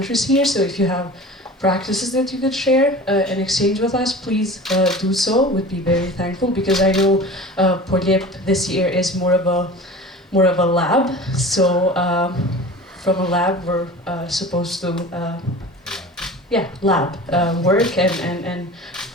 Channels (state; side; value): normal; both; correlation 0.37